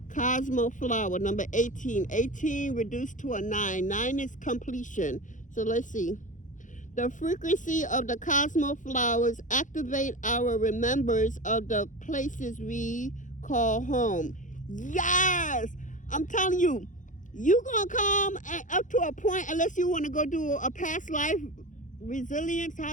Cosmo Flower, number 18. 18 reduced to a 9. 9 is completion. So let's see. The frequency of the Cosmo flowers activate our remembrance of the places we call home. Yes! I'm telling you, you gonna come up to a point, unless you want to go do a past life resilience,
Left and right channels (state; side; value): late; right; 0.37 ms